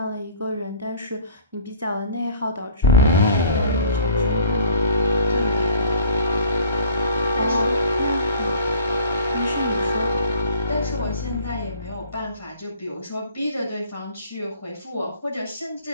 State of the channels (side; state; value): both; inverted; correlation -0.51